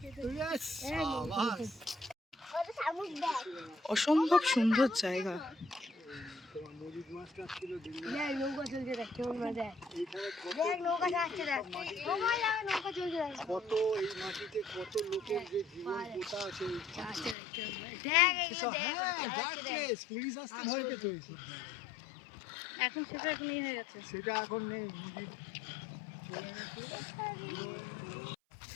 Yes, সাবাস। ওটা শামুক দেখ। অসম্ভব সুন্দর জায়গা। দেখ নৌকা চলছে, দেখ কেমন মজা। দেখ নৌকা যাচ্ছে, দেখ নৌকা যাবে, নৌকা চলছে, দেখ কত এই মাটিতে কত লোকের যে জীবন পোতা আছে। দেখ এইগুলো দেখ। হ্যাঁ, dark place, পুলিশ আসতে ভয় পেত এইসব। এখন সেটা এখন ইয়ে হয়ে গেছে। সেটা এখন নেই, নদীর চলে গেছে।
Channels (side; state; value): right; drops out; at 17.4 s